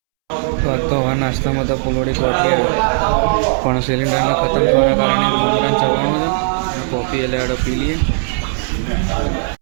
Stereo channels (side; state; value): left; silent; 69 dB below the other